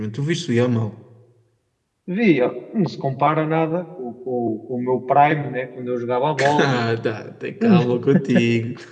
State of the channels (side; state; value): both; identical; correlation 1.00